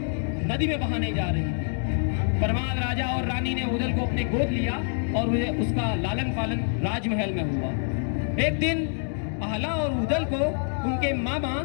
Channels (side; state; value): right; silent; 61 dB below the other